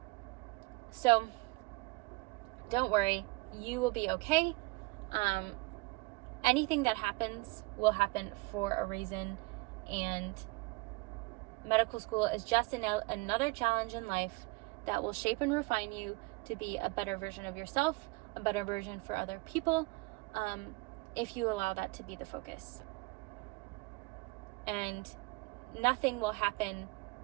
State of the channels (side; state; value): left; quieter; 25.4 dB